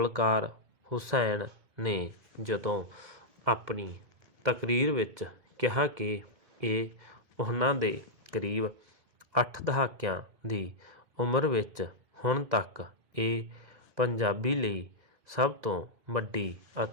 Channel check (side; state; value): left; late; 1.9 ms